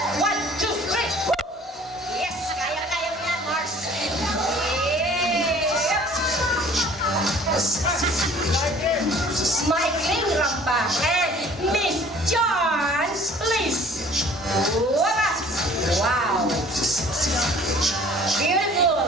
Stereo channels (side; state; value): both; normal; correlation 0.51